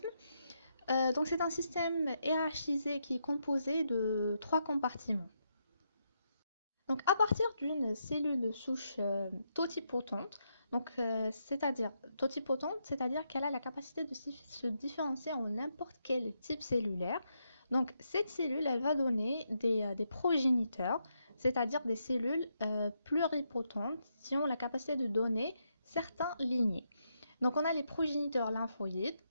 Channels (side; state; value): both; inverted; correlation -0.80